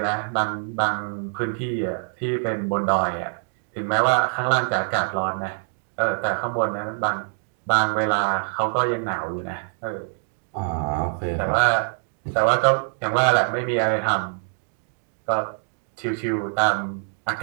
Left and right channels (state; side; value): silent; left; 59 dB below the other